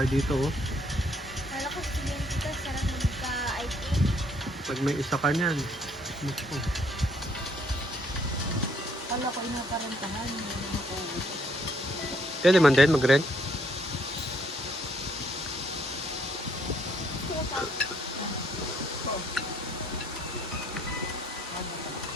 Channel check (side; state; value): both; normal; correlation 0.67